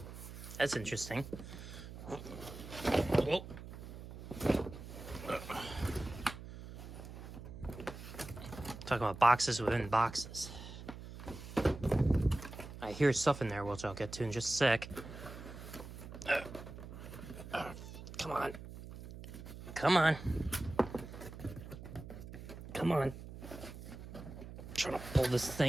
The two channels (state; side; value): noise; right; hum, 12 dB below the sound